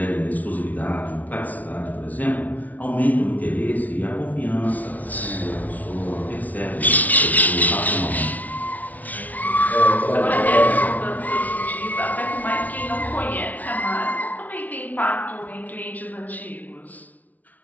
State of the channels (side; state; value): right; late; 0.075 ms